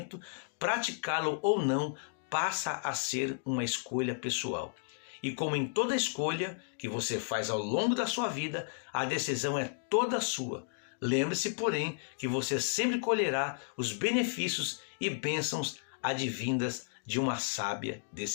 praticá-lo ou não passa a ser uma escolha pessoal. E como em toda escolha que você faz ao longo da sua vida, a decisão é toda sua. Lembre-se, porém, que você sempre colherá os benefícios e bênçãos advindas de uma sábia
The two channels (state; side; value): silent; right; digital silence